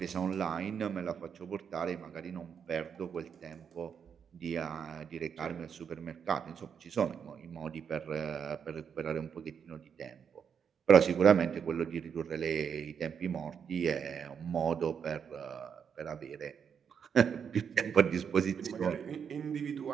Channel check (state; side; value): quieter; left; 7.2 dB